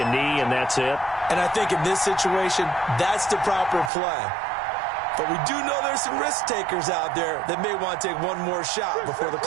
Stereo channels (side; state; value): left; drops out; at 3.9 s